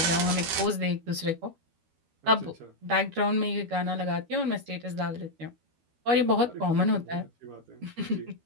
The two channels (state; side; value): late; left; 12 ms